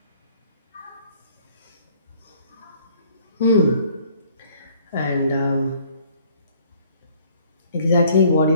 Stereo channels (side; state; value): both; inverted; correlation -0.59